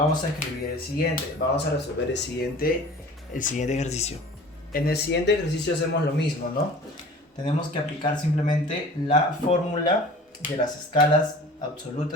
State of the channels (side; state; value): both; normal; correlation 0.43